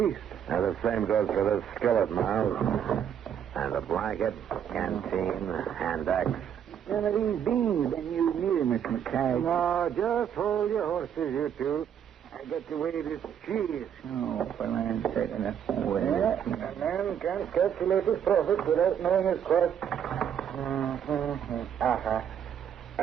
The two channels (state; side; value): quieter; left; 8.8 dB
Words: And the same goes for this skillet, Miles. And the blanket, canteen, hand axe. None of these beans been used neither, Miss McKay. No, just hold your horses, you two. I got to weigh this cheese. Oh, for land's sake, enough. Yeah, a man can't calculate his profit without knowing his cost.